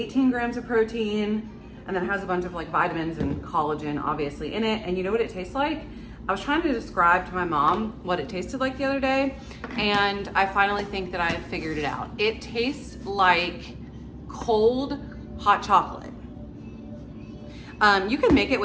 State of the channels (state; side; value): identical; both; correlation 1.00